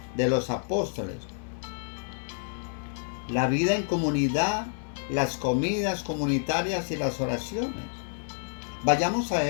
de los apóstoles, la vida en comunidad, las comidas comunitarias y las oraciones. Vayamos a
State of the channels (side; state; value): right; silent; 59 dB below the other